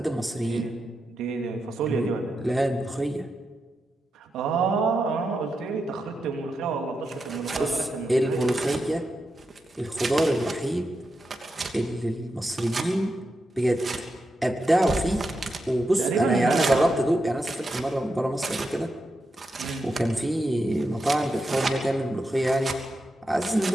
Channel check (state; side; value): normal; both; correlation 0.87